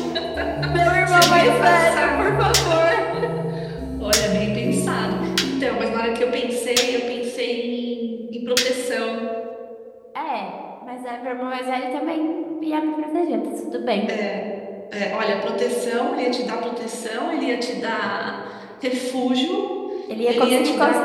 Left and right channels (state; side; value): identical; both; correlation 1.00